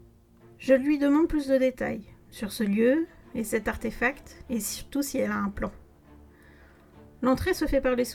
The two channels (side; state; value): both; identical; correlation 1.00